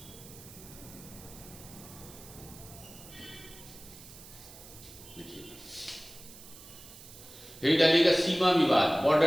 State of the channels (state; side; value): noise; right; hiss, 18 dB below the sound